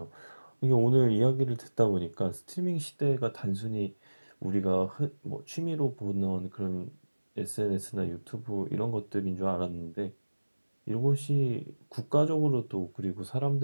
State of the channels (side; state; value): both; inverted; correlation -1.00